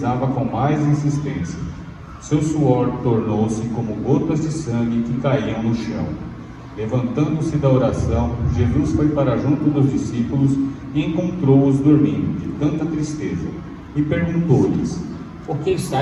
com mais insistência. Seu suor tornou-se como gotas de sangue que caíam no chão. Levantando-se da oração, Jesus foi para junto dos discípulos e encontrou-os dormindo, de tanta tristeza, e perguntou-lhes: Por que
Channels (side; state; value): both; identical; correlation 1.00